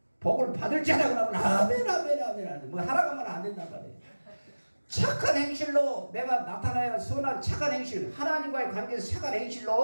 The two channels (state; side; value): inverted; both; correlation -1.00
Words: 복을 받을 줄 알고 나면 아멘. 뭐 하라고 하면 안 된단 말이에요. 착한 행실로 내가 나타나야 선한 착한 행실 하나님과의 관계에서 착한